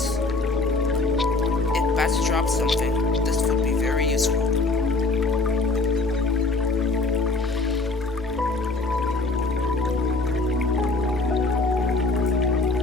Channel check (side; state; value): right; quieter; 3.3 dB